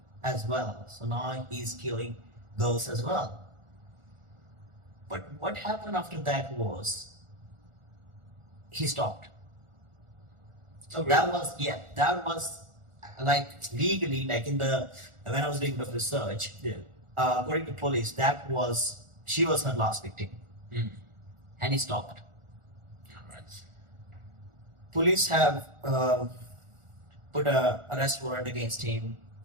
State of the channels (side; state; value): left; late; 1.4 ms